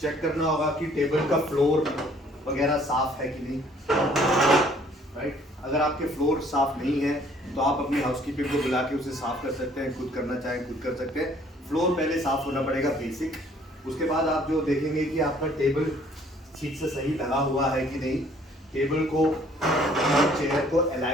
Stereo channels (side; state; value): both; normal; correlation 0.59